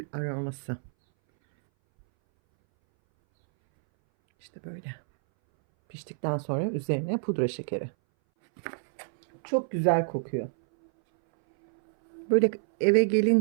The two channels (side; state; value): left; silent; 60 dB below the other